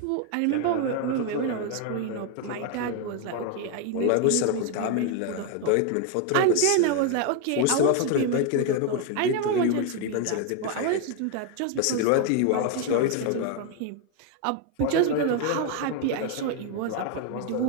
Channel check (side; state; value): both; different; correlation 0.01